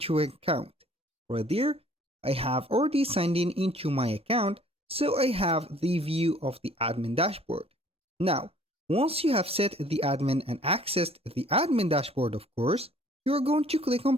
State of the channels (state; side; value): normal; both; correlation 0.56